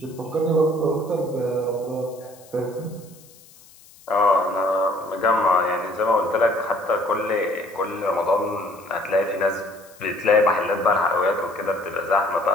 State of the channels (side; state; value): left; noise; hiss, 25 dB below the sound